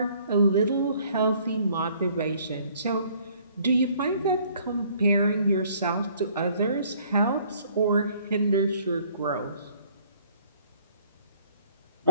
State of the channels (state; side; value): inverted; both; correlation -0.59